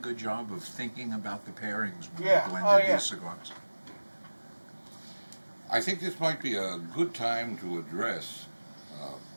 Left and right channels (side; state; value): both; inverted; correlation -1.00